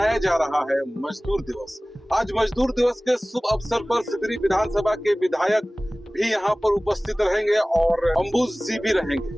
जा रहा है मजदूर दिवस। आज मजदूर दिवस के शुभ अवसर पर सिंदरी विधानसभा के विधायक भी यहाँ पर उपस्थित रहेंगे और अंबुज जी भी रहेंगे।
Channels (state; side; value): normal; both; correlation 0.98